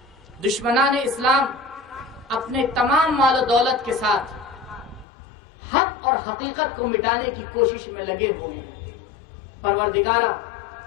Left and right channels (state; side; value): drops out; right; at 5.1 s